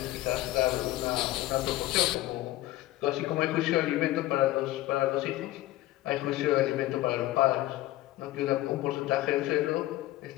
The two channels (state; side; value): quieter; right; 16.1 dB